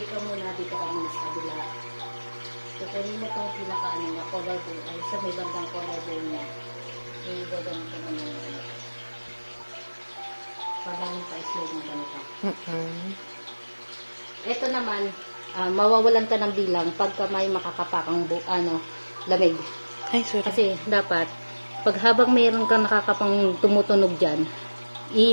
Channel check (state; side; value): inverted; both; correlation -1.00